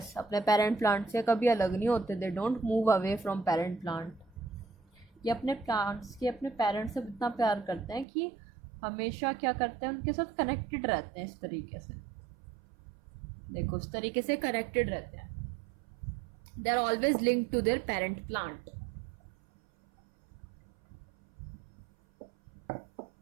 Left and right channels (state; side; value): drops out; left; at 8.1 s